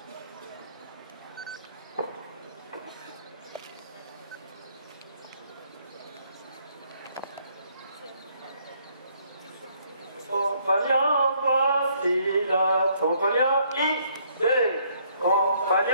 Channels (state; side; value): inverted; both; correlation -0.67